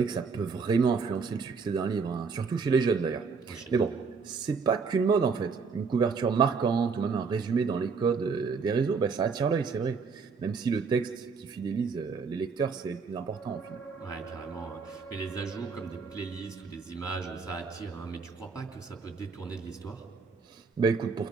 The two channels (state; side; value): quieter; left; 5.2 dB